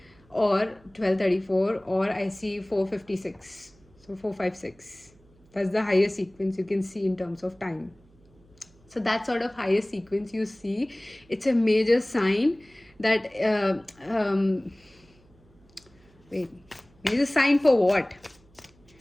or 1234, or I see 456. So 456. That's the highest sequence you can see in terms of time. So that sort of highest sequence you see, it's a major sign that major sign for what?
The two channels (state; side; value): noise; right; hum, 30 dB below the sound